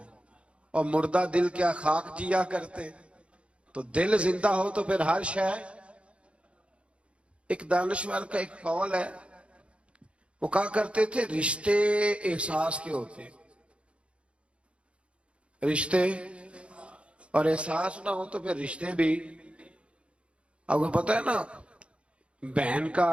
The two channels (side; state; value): left; late; 0.059 ms